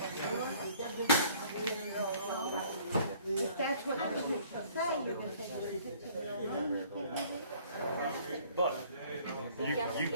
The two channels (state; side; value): inverted; both; correlation -0.56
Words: If that's what the restrictions say, you can take it to 15 But